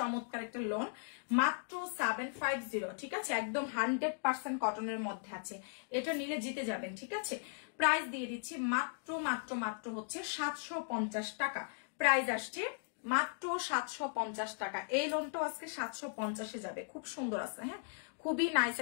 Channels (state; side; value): silent; right; digital silence